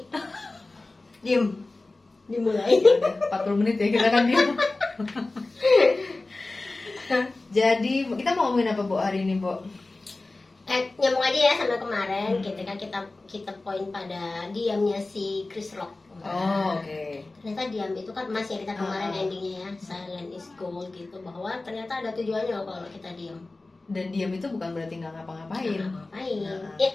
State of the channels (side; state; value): right; quieter; 3.2 dB